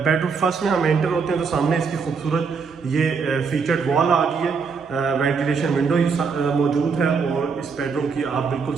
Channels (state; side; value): quieter; left; 5.4 dB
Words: फर्स्ट में हम एंटर होते हैं तो सामने इसकी खूबसूरत ये फीचर्ड वॉल आ गई है। वेंटिलेशन विंडो मौजूद है। और इस बेडरूम की आप बिल्कुल